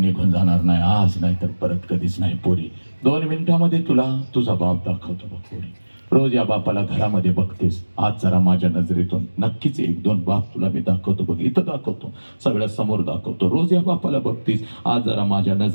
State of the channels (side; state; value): both; inverted; correlation -1.00